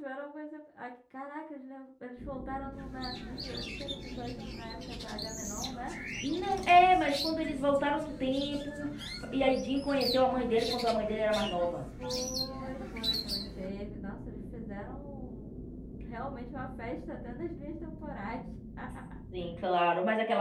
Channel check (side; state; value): both; identical; correlation 1.00